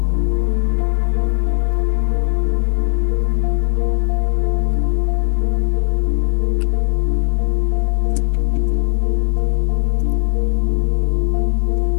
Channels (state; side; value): silent; right; digital silence